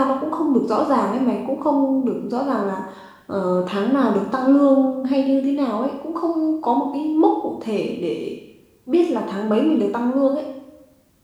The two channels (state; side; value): identical; both; correlation 1.00